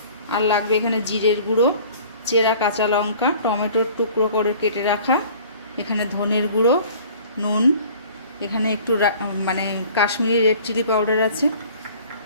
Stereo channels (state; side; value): inverted; both; correlation -0.49